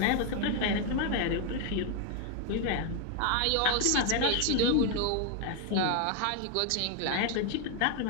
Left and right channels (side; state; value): both; different; correlation 0.01